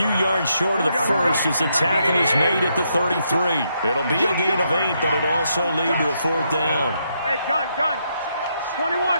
yards short of the first as the tackle is made at the 33. It'll be a gain of 8, but it'll also lead to a 4th down. Hey, gun.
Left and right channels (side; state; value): both; inverted; correlation -0.78